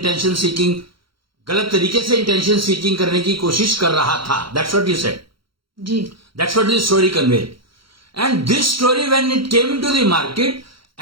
गलत तरीके से इंटेंशन सीकिंग करने की कोशिश कर रहा था. That's what you said ji. That's what this story conveyed. And this story when it came into the market,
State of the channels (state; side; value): late; left; 0.74 ms